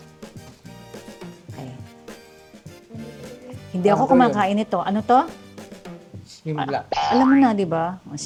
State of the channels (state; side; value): identical; both; correlation 1.00